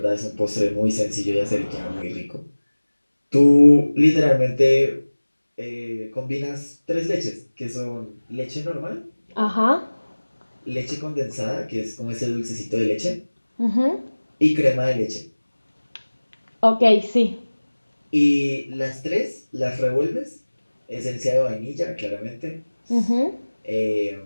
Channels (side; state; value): both; inverted; correlation -1.00